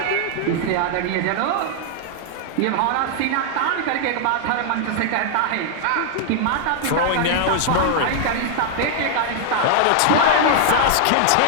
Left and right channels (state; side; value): different; both; correlation 0.00